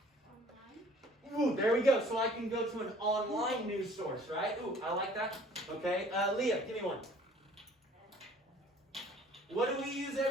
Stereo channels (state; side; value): normal; both; correlation 0.53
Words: Ooh, there we go. So I can go to an online news source, right? Ooh, I like that. Okay, Leah, give me one. What do we use